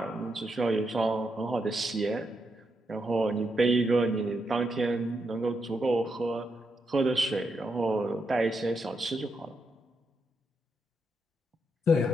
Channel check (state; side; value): normal; both; correlation 0.82